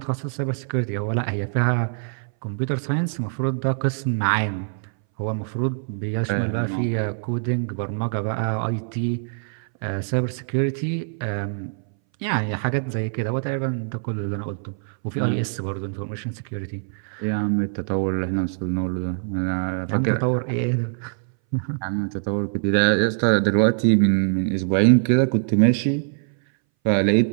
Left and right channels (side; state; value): left; silent; 61 dB below the other